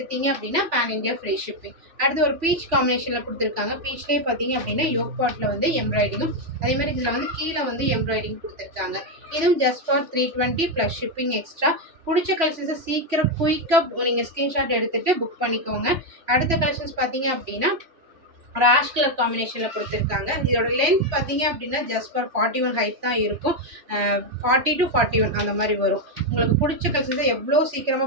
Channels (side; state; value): left; late; 3.1 ms